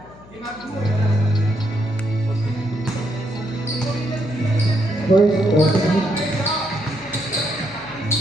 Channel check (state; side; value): noise; left; hum, 22 dB below the sound